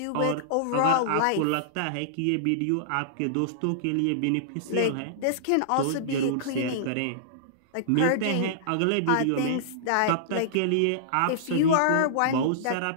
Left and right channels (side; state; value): both; different; correlation -0.02